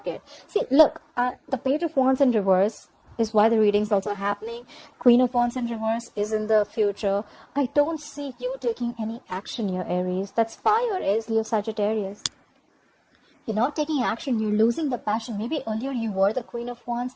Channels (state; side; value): identical; both; correlation 1.00